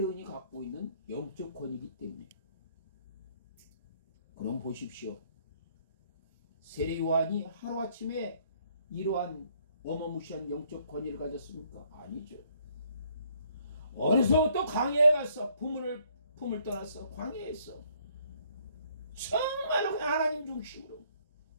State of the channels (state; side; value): inverted; both; correlation -0.65